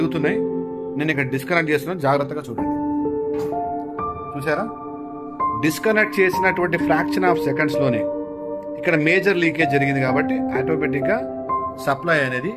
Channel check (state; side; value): identical; both; correlation 1.00